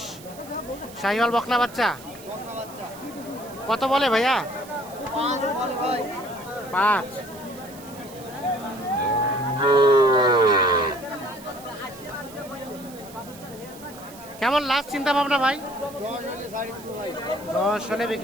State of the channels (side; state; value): right; noise; hiss, 19 dB below the sound